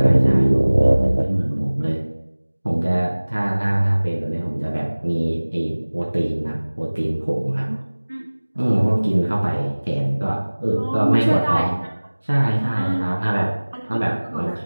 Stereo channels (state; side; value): inverted; both; correlation -1.00